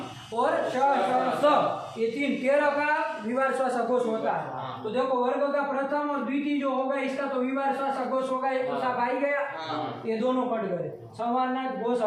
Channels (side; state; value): both; identical; correlation 1.00